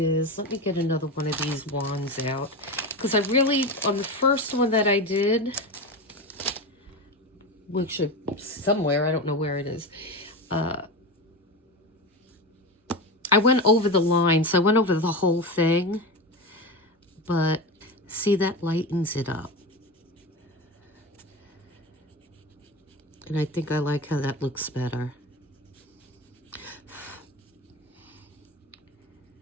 let me get another one of these wands out. Because I really, on the first one that I did, which is somewhere, I don't know where it is, I went over the line, so I went over the whole thing, but see, that lightens it up. And I think I like how that looks better.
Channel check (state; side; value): normal; both; correlation 0.22